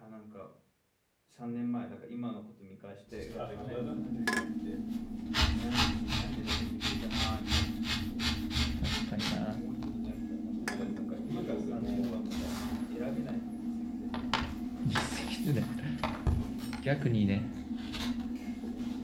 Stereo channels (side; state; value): both; identical; correlation 1.00